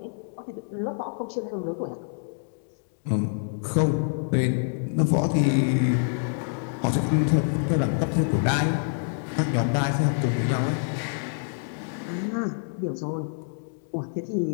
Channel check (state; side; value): silent; right; digital silence